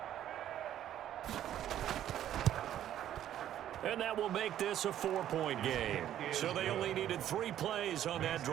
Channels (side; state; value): left; quieter; 11.4 dB